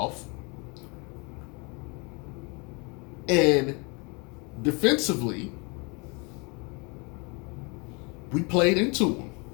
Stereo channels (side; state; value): right; quieter; 30.9 dB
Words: And defensively, we played into them.